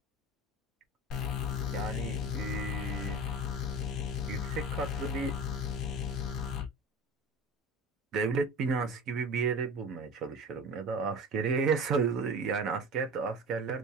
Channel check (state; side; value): normal; both; correlation 0.33